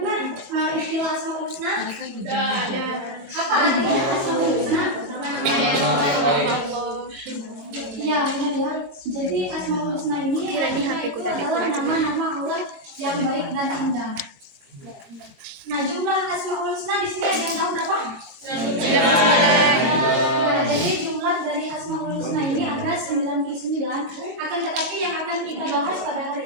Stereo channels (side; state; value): left; late; 22 ms